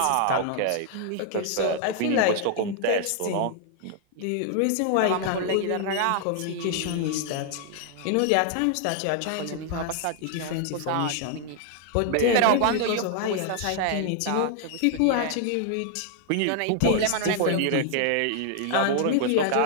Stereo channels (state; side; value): different; both; correlation 0.00